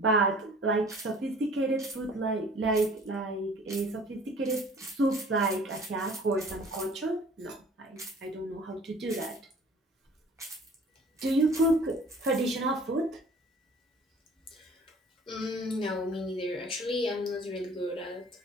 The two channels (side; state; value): both; normal; correlation 0.50